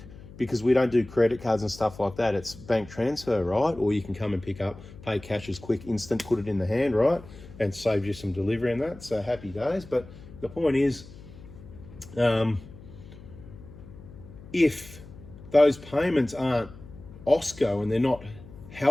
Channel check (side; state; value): left; noise; hum, 18 dB below the sound